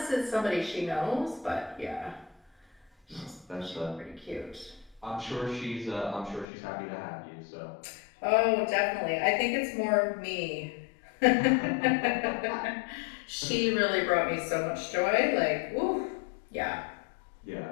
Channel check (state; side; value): drops out; right; at 6.5 s